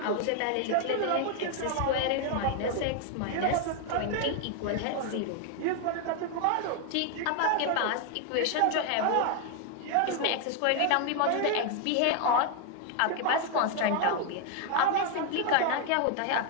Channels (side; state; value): both; different; correlation 0.00